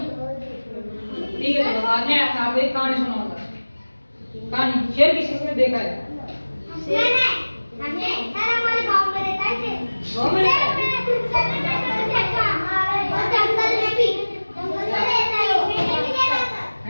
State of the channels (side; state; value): both; inverted; correlation -1.00